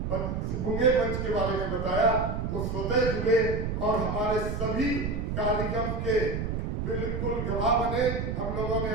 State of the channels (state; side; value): noise; right; rumble, 2 dB below the sound